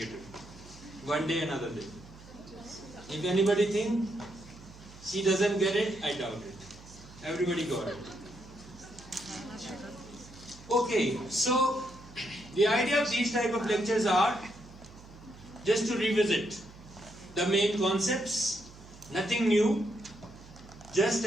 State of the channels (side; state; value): right; noise; hum, 19 dB below the sound